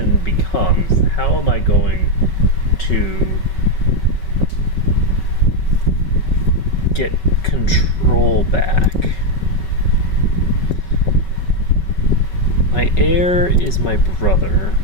becomes, how am I going to get control back? My heir is my brother,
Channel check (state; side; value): late; right; 5.3 ms